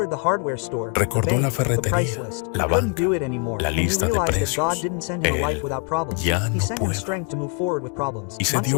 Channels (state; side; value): quieter; right; 37.9 dB